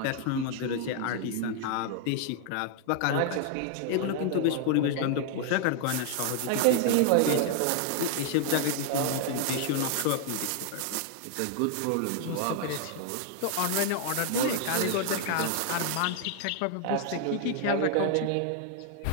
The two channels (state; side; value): different; both; correlation 0.00